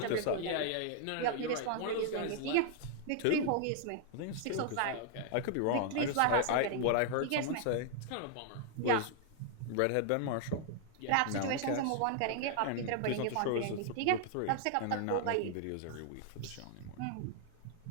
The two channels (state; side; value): different; both; correlation -0.01